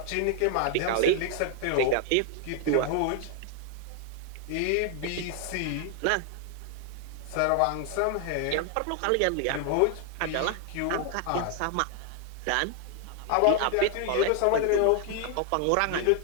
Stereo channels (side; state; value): both; different; correlation 0.00